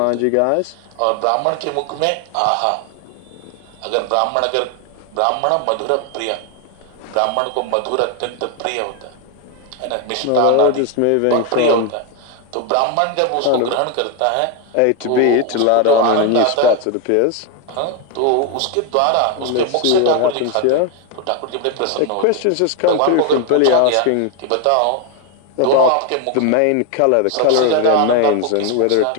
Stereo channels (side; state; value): both; different; correlation 0.01